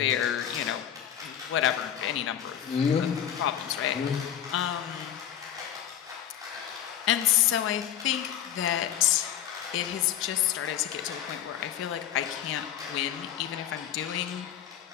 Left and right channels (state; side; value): quieter; right; 10.2 dB